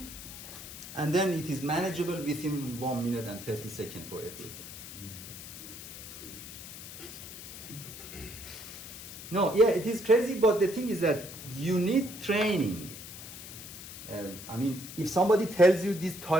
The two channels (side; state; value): left; noise; hiss, 12 dB below the sound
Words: And then it is manageable within 1 minute and 30 seconds for FE exam. No, yeah, it is crazy, but the thing is that you need training. I mean, if somebody tells you this